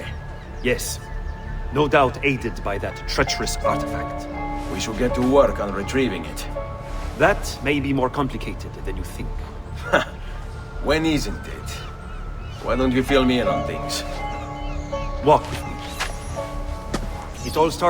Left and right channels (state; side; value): identical; both; correlation 1.00